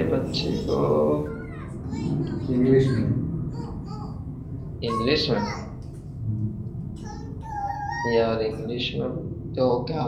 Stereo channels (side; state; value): both; identical; correlation 1.00